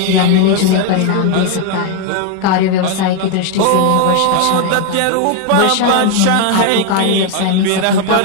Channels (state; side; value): different; both; correlation 0.01